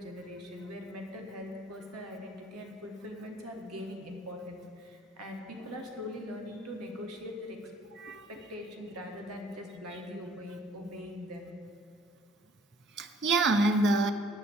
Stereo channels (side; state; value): both; normal; correlation 0.58